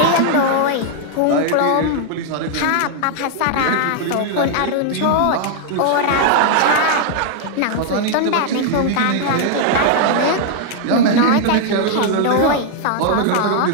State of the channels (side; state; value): both; different; correlation -0.01